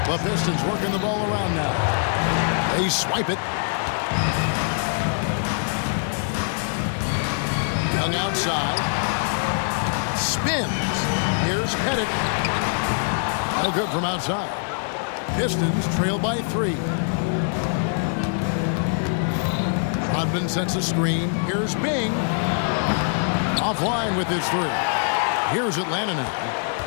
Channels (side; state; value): right; silent; digital silence